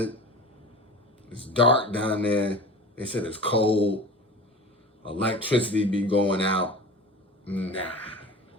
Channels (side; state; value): both; normal; correlation 0.35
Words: It's dark down there. They said it's cold. Electricity be going out. Nah.